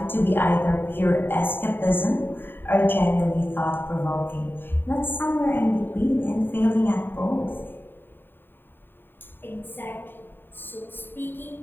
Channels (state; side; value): late; right; 0.096 ms